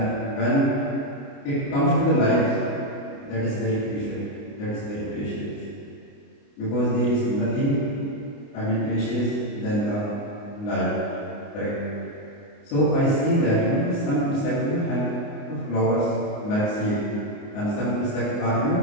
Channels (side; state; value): right; late; 29 ms